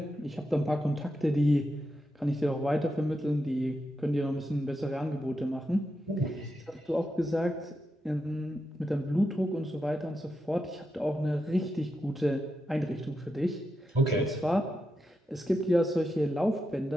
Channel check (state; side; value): normal; both; correlation 0.86